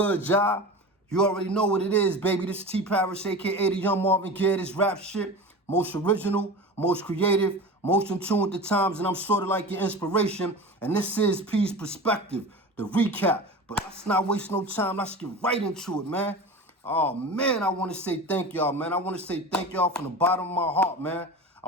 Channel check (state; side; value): normal; both; correlation 0.31